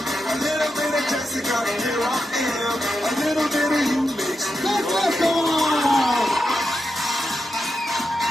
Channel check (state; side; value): normal; both; correlation 0.87